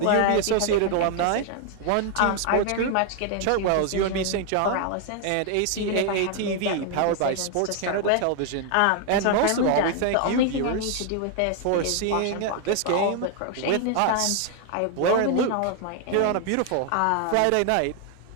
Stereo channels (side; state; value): both; different; correlation 0.00